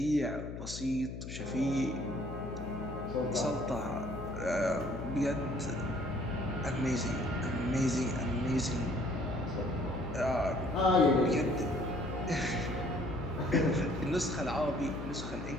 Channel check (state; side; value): noise; left; hum, 8 dB below the sound